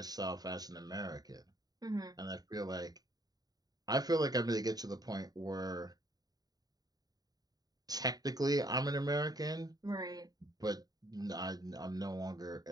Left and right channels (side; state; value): left; late; 0.18 ms